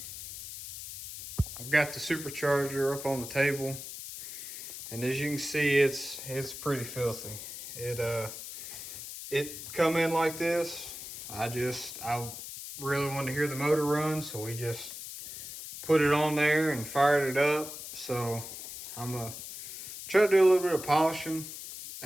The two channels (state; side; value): noise; left; hiss, 10 dB below the sound